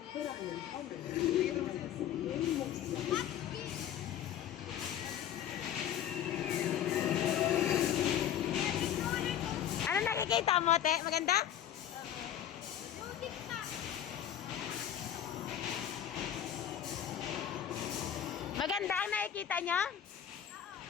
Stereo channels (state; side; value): quieter; right; 10.2 dB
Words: Ano nakikita mo, te? Maganda? Maganda ang nakikita niyo?